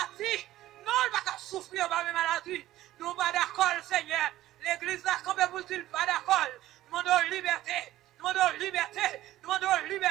Non, il va pas souffrir par mes maladies. Nous pas d'accord, Seigneur. L'église a campé pour dire pas d'accord. Nous demandons liberté. Nous demandons liberté. Nous demandons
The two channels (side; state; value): left; quieter; 14.8 dB